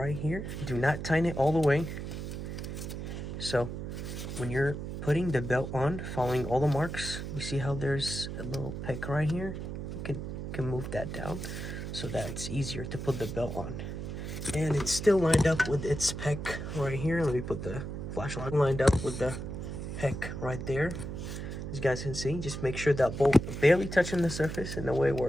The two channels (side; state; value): right; noise; hum, 6 dB below the sound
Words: here, do not tighten it all the way. So when you're putting the belt on, following all the marks, you see how there's a little peck right here? You can move that down so that it's easier to put the belt on. And it's still lined up with its peck right here. Let me put the flashlight lined up with the peck right there. As you guys can see, just make sure that bolt barely touching the surface in a way